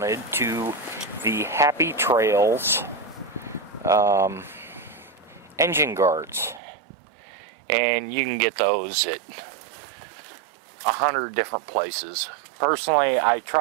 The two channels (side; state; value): left; drops out; at 6.6 s